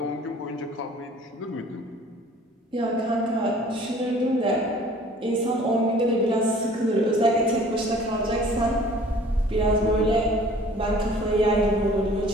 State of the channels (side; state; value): both; normal; correlation 0.51